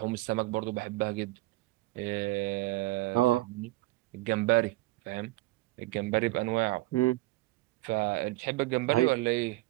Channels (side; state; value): left; quieter; 19.5 dB